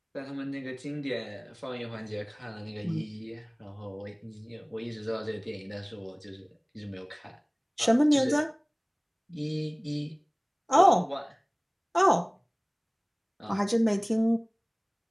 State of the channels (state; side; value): identical; both; correlation 1.00